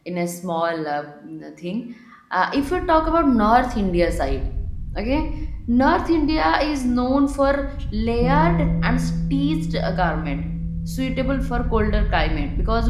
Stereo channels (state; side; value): identical; both; correlation 1.00